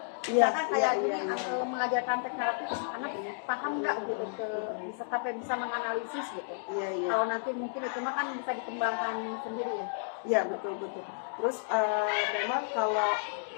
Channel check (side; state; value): right; silent; digital silence